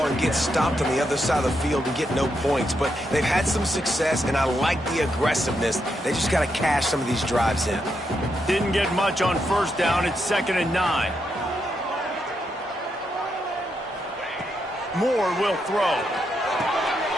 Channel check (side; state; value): both; normal; correlation 0.82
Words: and get stopped on the other side of the field and get no points. But they've had some success, and I like the aggressiveness. They just got to cash some of these drives in. Didn't get much on first down. It's 2nd and 9. Moore will throw.